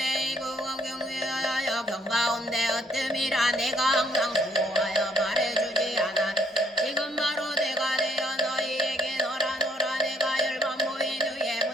이구원 경위하여 경가운데 어뜸이라 내가 항상 수호하여 말해주지 않아 지금 바로 내가 되어 너희에게 너라 내가 열반 모인 후에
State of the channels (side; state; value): both; normal; correlation 0.67